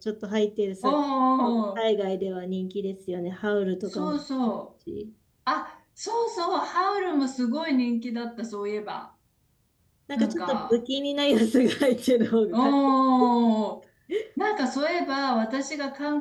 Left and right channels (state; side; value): identical; both; correlation 1.00